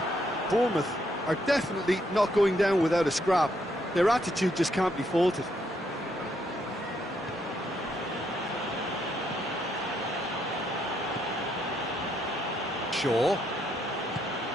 Bournemouth are definitely not going down without a scrap. Their attitude just can't be faulted. Shaw.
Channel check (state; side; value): normal; both; correlation 0.75